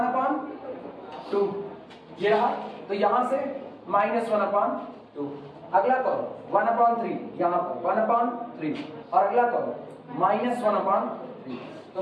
ये रहा, तो यहाँ से -1/2, अगला कौन 1/3, यहाँ पर 1/3 और अगला कौन -1/3।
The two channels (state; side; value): identical; both; correlation 1.00